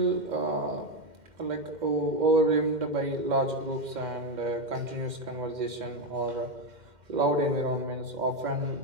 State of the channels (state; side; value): late; left; 2.1 ms